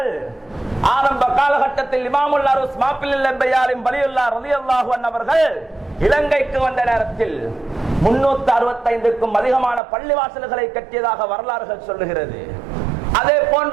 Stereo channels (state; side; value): drops out; left; at 9.8 s